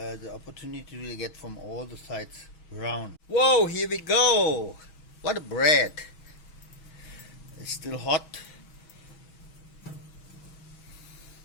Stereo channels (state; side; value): late; right; 6.3 ms